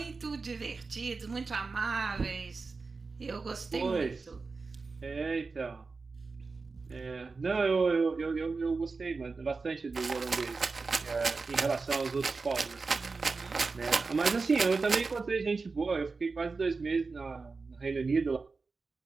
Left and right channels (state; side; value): quieter; left; 4.2 dB